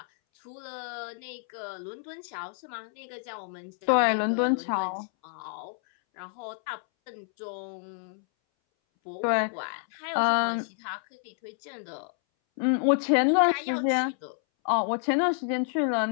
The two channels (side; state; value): right; silent; 59 dB below the other